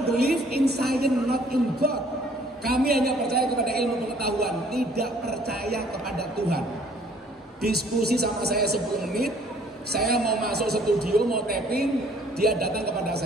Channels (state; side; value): normal; both; correlation 0.59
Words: believe in science, not in God. Kami hanya percaya kepada ilmu pengetahuan, tidak percaya kepada Tuhan. Diskusi sama saya 10 menit. Saya mau masuk studio, mau tapping, dia datang kepada